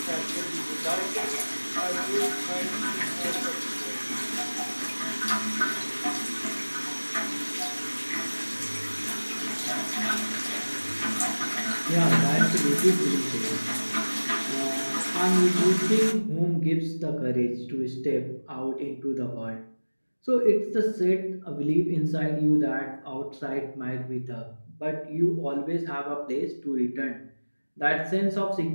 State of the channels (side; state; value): both; inverted; correlation -1.00